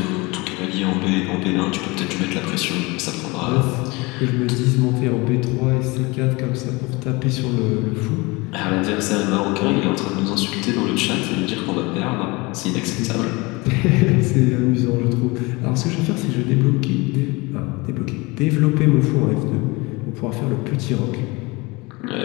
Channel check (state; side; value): quieter; right; 24.8 dB